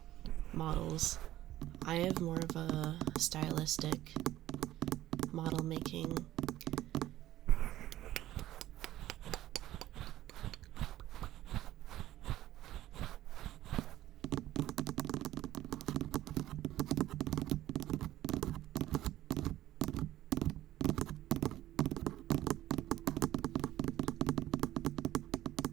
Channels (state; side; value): quieter; left; 14.3 dB